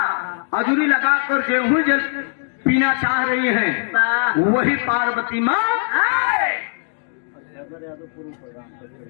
अजूरी लगाकर गेहूं जल पीना चाह रही हैं। वही पार्वती माँ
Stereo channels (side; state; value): right; silent; digital silence